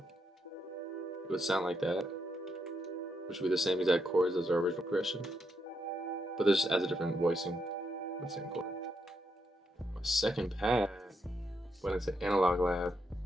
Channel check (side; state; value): both; normal; correlation 0.80